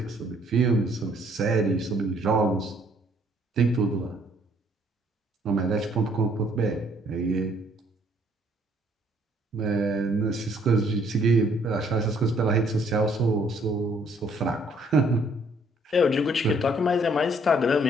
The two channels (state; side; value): normal; both; correlation 0.64